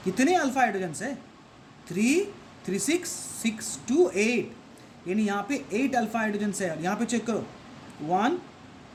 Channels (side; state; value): both; identical; correlation 1.00